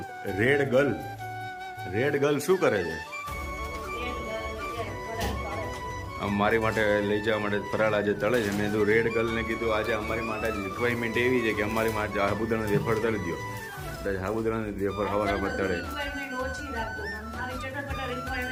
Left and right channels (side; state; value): both; identical; correlation 1.00